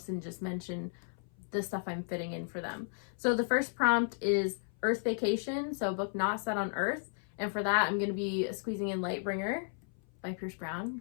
and just mention the stuff I'm fitting in for them. So the first prompt is Earth Vacation. So a book not set on Earth. And for that, I'm going to be squeezing in Lightbringer by Pierce Brown,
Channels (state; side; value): silent; right; 55 dB below the other